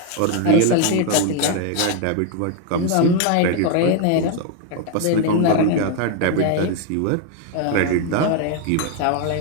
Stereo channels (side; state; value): both; different; correlation 0.01